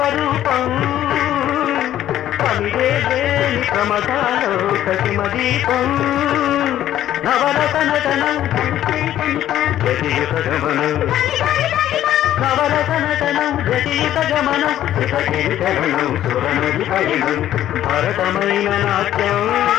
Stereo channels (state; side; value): quieter; right; 12.3 dB